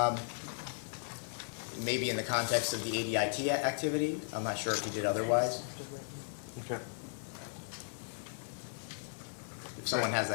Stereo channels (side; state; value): right; silent; digital silence